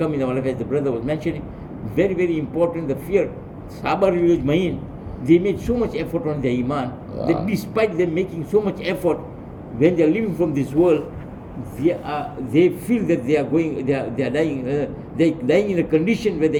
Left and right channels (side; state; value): both; identical; correlation 1.00